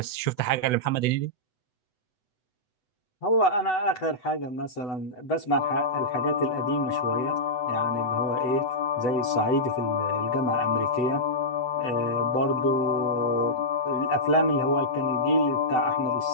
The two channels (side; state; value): right; late; 8.0 ms